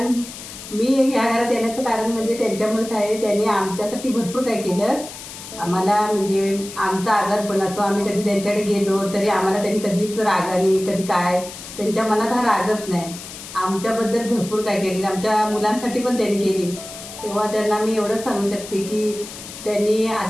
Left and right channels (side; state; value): left; noise; hiss, 13 dB below the sound